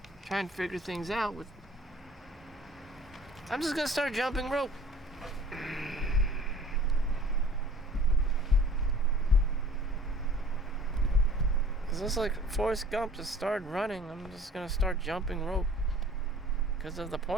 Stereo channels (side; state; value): both; normal; correlation 0.48